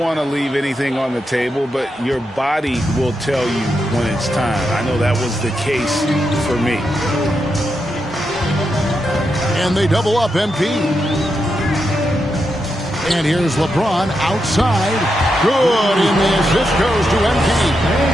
to leave anything on the table, but your body will tell you when it's time. I know that was the case for me. And they double up MP. And here's LeBron outside. Good, and the assist goes to MP.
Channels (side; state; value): both; normal; correlation 0.85